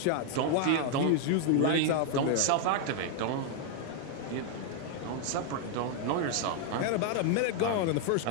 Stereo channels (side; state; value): both; different; correlation 0.00